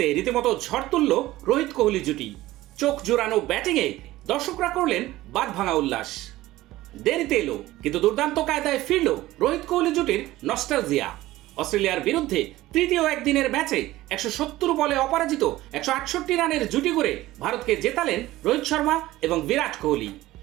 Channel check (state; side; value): quieter; left; 16.7 dB